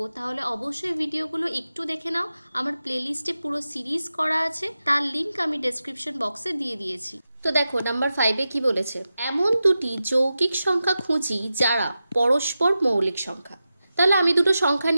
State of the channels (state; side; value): inverted; both; correlation -0.92